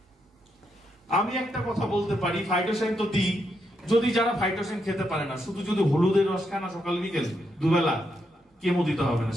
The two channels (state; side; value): normal; both; correlation 0.80